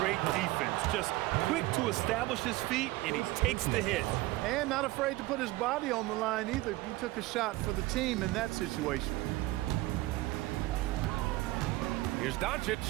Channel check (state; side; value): quieter; left; 19.0 dB